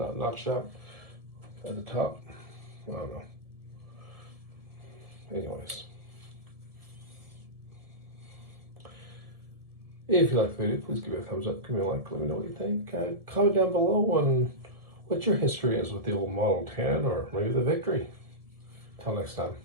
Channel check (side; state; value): left; late; 1.7 ms